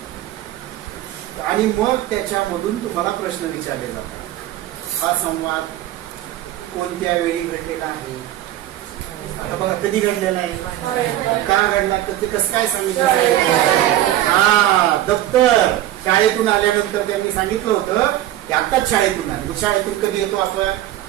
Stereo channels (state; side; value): quieter; left; 13.6 dB